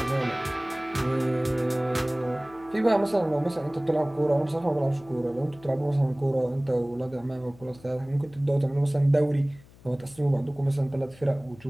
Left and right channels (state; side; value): noise; left; hum, 24 dB below the sound